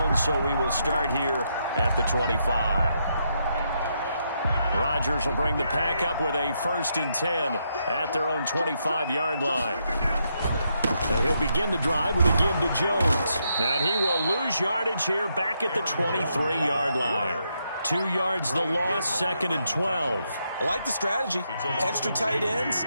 so we will start here at the 25. Rodgers will bring the pack up with a 1st and 10 at their own 25-yard line. And he'll begin the drive with a give to Jones. And he will lose yardage here back at the 23-yard line. 2 yards the loss, 2nd and 12. I like the strategy. Extra tight ends,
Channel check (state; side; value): inverted; both; correlation -0.79